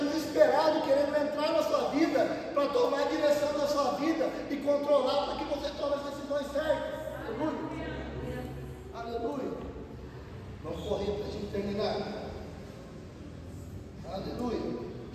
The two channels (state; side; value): identical; both; correlation 1.00